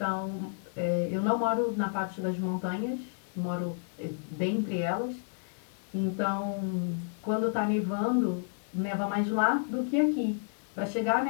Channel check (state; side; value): silent; right; 57 dB below the other